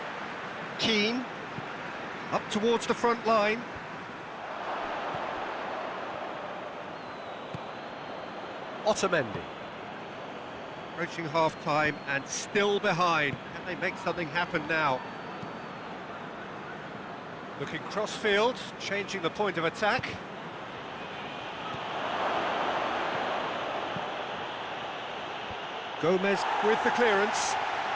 Keane, up towards the front line. Otamendi. Approaching half-time and still behind. Can they make something happen now? Looking cross-field, changing the point of attack. Gomez with the clearance.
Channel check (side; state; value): both; identical; correlation 1.00